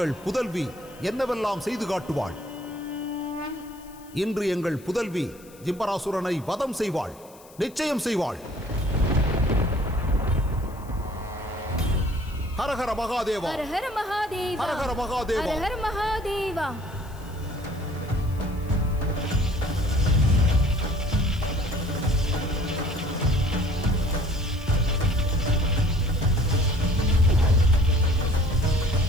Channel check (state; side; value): noise; left; hiss, 24 dB below the sound